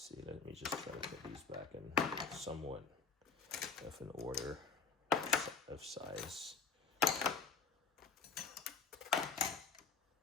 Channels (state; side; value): quieter; right; 5.0 dB